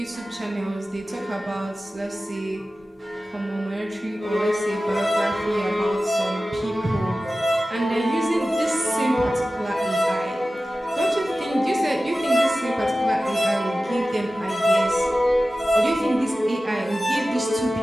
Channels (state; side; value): normal; both; correlation 0.95